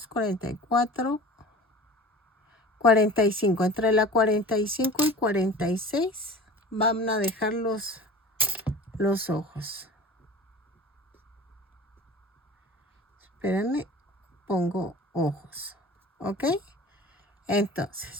44, 45. Entre la 45 y 46 van a dejar los ojos. Espérenme, pongo ojos. ¿Ok? Entonces,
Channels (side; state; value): both; normal; correlation 0.39